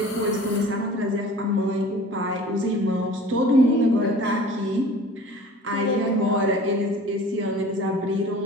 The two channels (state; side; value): normal; both; correlation 0.44